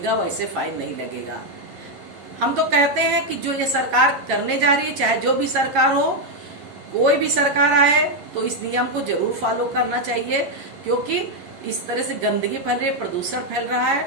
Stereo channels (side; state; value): left; late; 11 ms